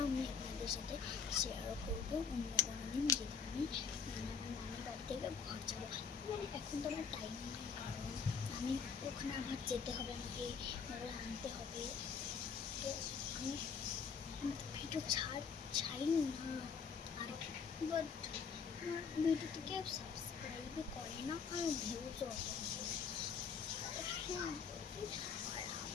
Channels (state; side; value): quieter; right; 6.1 dB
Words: আমি আপনাদের সাথে শেয়ারও করবো অন্য কোনো দিন, যেদিন আমি আমার নানির বাড়ি থেকে ঘর যাবো। মানে এখন তো আমার টাইম নেই, কারণ আমি ওখানে আবার যেতে হবে, আমাকে ওগুলো আনতে হবে। তো আমি ভিডিও ছাড়িনি না, আর বাট আমার ভিডিওতে কেউ সাবস্ক্রাইবই করে না, আর ভিউজও অত। আর